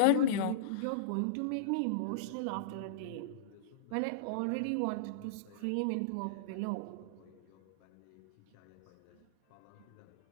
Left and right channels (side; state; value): both; different; correlation -0.03